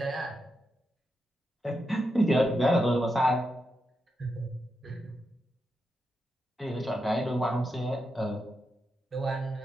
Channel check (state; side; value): normal; both; correlation 0.86